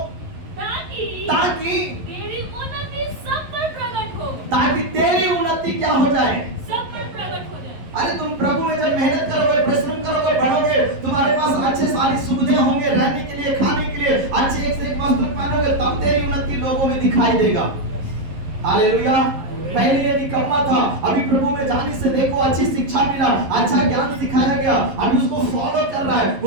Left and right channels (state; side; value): late; left; 11 ms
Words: ताकि तेरी उन्नति सब पर प्रकट हो। ताकि तेरी उन्नति क्या हो जाए, सब पर प्रकट हो जाए। अरे तुम प्रभु में जब मेहनत करोगे, परिश्रम करोगे, बढ़ोगे, तुम्हारे पास अच्छे सारी सुविधाएं होंगे, रहने के लिए, खाने के लिए, अच्छे एक से एक वस्त्र पहनोगे, तब तेरी उन्नति लोगों में दिखाई देगा। हालेलुया। पहले ये निकम्मा था, अभी प्रभु में जाने से देखो अच्छी शिक्षा मिला, अच्छा ज्ञान सिखाया गया, अभी उसको फॉलो कर रहा है,